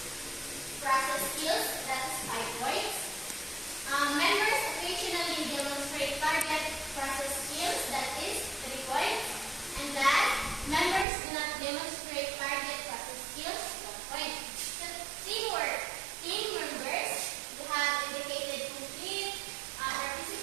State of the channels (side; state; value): left; drops out; at 11.1 s